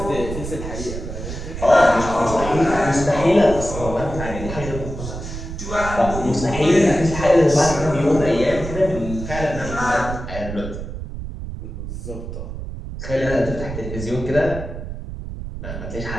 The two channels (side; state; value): right; noise; rumble, 8 dB below the sound